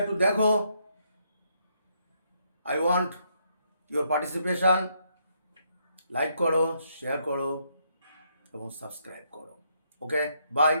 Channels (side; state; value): both; inverted; correlation -0.75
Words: একটু দেখো, I want your participation, like করো, শেয়ার করো এবং সাবস্ক্রাইব করো। ওকে, বাই,